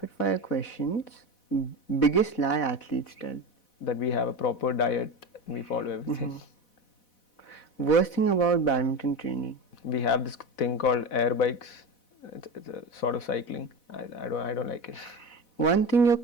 fire questions. Biggest lie athletes tell. That we have a proper diet and we follow everything. Worst thing about badminton training. We have this thing called air bikes. It's a sort of cycling. I don't like it. One thing your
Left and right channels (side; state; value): right; late; 4.1 ms